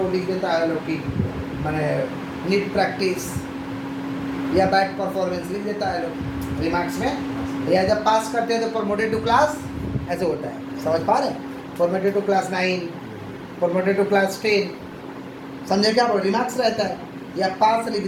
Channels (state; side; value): identical; both; correlation 1.00